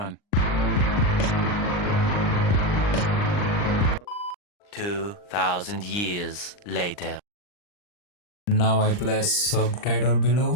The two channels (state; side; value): late; right; 39 ms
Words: 2,000 years later. Now I place subtitle